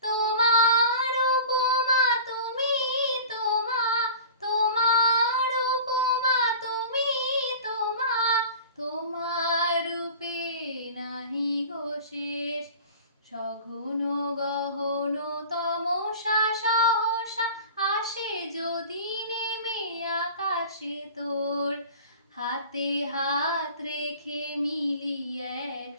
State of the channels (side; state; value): both; inverted; correlation -0.40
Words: তোমার উপমা তুমি, তোমার উপমা তুমি, তোমার রূপে নাহি গো শেষ। সঘন গহন তমসা সহসা আসে যদি নেমে আকাশে তোর। হাতে হাত রেখে মিলি